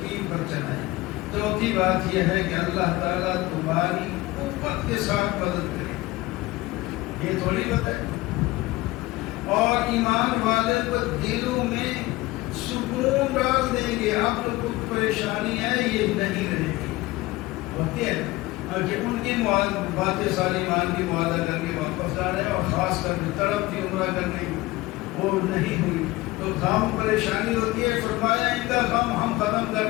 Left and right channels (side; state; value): right; quieter; 19.5 dB